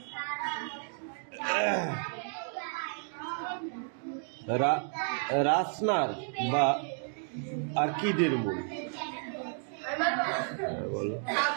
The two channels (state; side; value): silent; left; 55 dB below the other